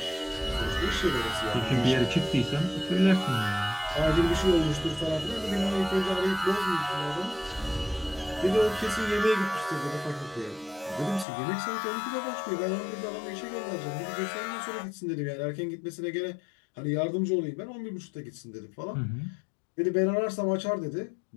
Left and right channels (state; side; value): drops out; right; at 11.2 s